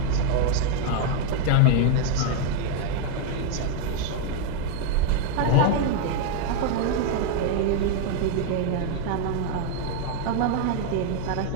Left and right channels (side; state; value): both; different; correlation 0.00